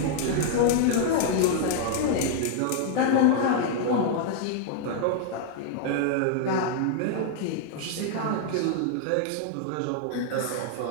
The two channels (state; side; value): different; both; correlation 0.00